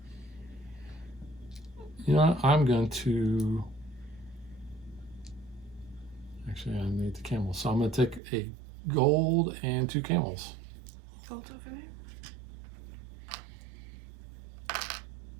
you know, I'm going to, actually I need the camels. So I'm going to take a gold and 2 camels. Gold over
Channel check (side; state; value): left; drops out; at 8.2 s